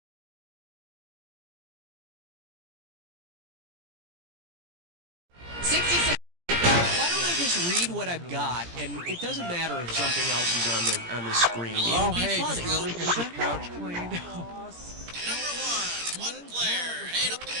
why don't I just read what I've got, and it doesn't matter if something else is on the screen. It'll be funny. Couch cleaned.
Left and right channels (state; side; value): late; left; 17 ms